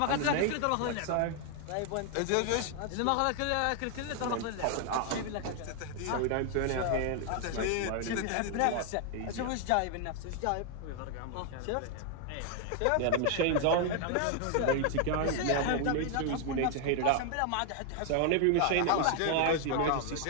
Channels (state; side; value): different; both; correlation 0.00